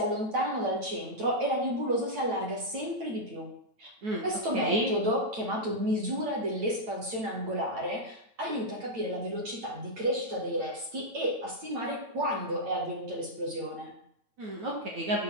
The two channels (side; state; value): left; late; 9.0 ms